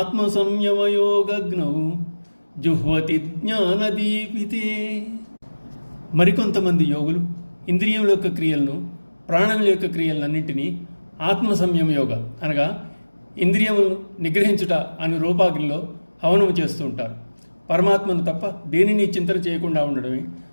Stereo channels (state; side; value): inverted; both; correlation -1.00